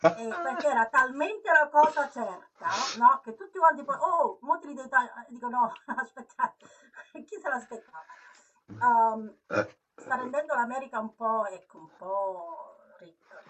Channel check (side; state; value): both; identical; correlation 1.00